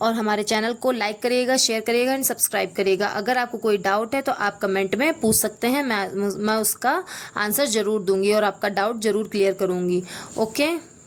और हमारे चैनल को लाइक करिएगा, शेयर करिएगा एंड सब्सक्राइब करिएगा। अगर आपको कोई डाउट है तो आप कमेंट में पूछ सकते हैं, मैं उसका आंसर ज़रूर दूंगी और आपका डाउट ज़रूर क्लियर करूंगी। Okay,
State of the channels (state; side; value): identical; both; correlation 1.00